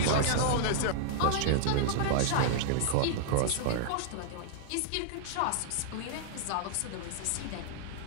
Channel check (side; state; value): both; different; correlation -0.01